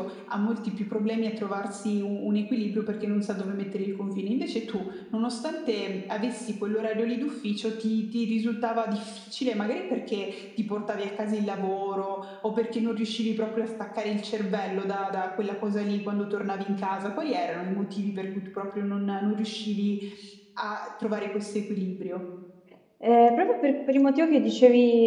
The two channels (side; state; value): both; identical; correlation 1.00